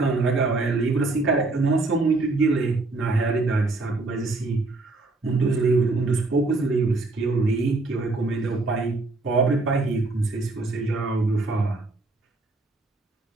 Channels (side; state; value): left; quieter; 3.3 dB